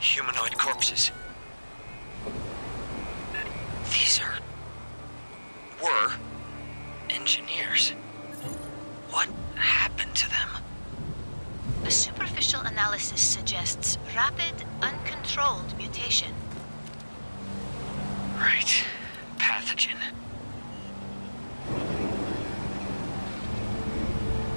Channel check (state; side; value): inverted; both; correlation -1.00